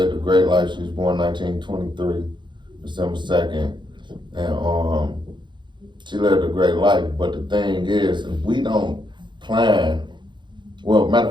a great life. She was born 1923, December 2nd. And she lived a great life. But the thing is, if we don't plan, well, matter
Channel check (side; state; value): left; late; 0.23 ms